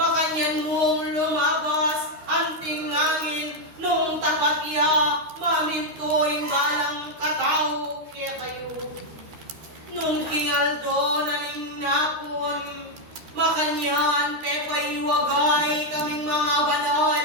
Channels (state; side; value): late; left; 13 ms